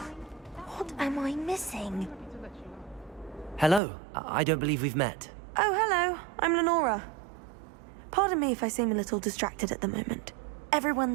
What am I missing? Hello. I don't believe we've met. Oh, hello. I'm Lenora. Pardon me if I seem a little distracted at the moment.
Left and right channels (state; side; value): drops out; left; at 3.8 s